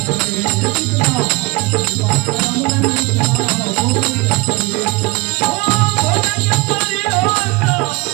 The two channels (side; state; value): left; quieter; 23.4 dB